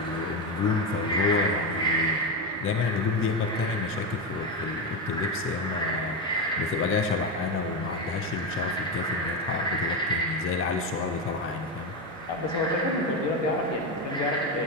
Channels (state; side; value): normal; both; correlation 0.13